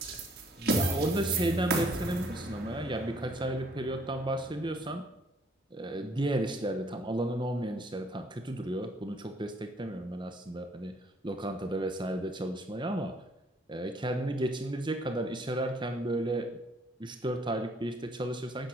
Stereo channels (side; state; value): both; normal; correlation 0.63